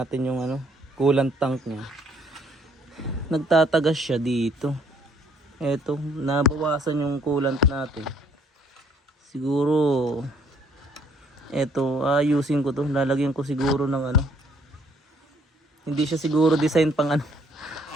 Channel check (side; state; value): both; normal; correlation 0.64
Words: natin yung coolant tank niya. Nagtatagas siya dito. Eto, nabawasan yung coolant natin. Siguro eto, ayusin ko to. Lalagyan ko siguro ng hindi siya siguro design pang